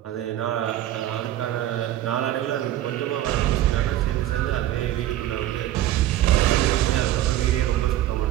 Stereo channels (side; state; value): left; quieter; 13.5 dB